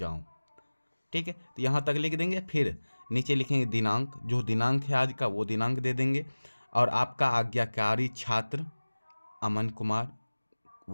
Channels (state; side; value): inverted; both; correlation -1.00